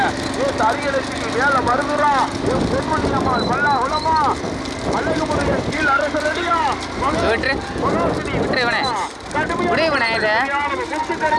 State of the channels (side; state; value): both; identical; correlation 1.00